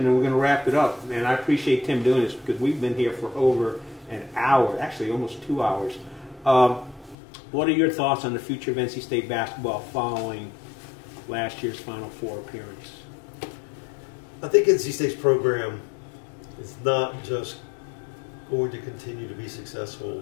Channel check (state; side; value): drops out; right; at 7.2 s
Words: and we're going to wrap it up. And I appreciate Tim doing this because we've been here for over an hour, actually almost 2 hours. What are your thoughts on the future of NC State basketball following last year's Final Four appearance? I think NC State's program is not just going to continue to be successful